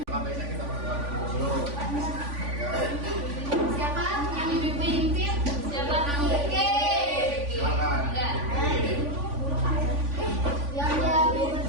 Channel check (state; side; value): late; left; 3.5 ms